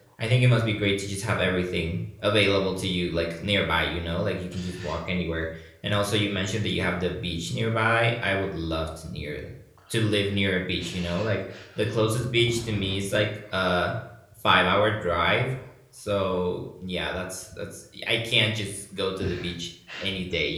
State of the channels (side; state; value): both; identical; correlation 1.00